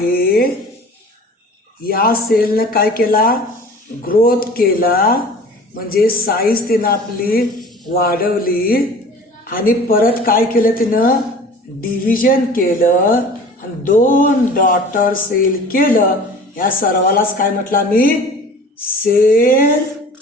या सेलनं काय केला, ग्रोथ केला, म्हणजे साईज तिनं आपली वाढवली आणि परत काय केलं तिनं, डिव्हिजन केलं आणि 2 डॉटर सेल केलं. या सर्वालाच काय म्हटलं मी, सेल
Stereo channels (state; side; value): normal; both; correlation 0.43